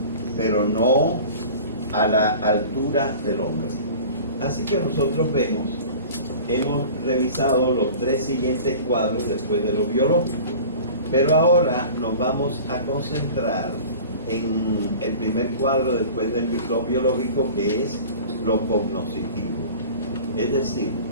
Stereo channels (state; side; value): inverted; both; correlation -0.40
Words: pero no a la altura del hombre. Así que nosotros vemos hemos revisado los 3 siguientes cuadros después de lo biológico. Pero ahora nos vamos a concentrar en el primer cuadro después de lo biológico, que es lo cognoscitivo. Es decir,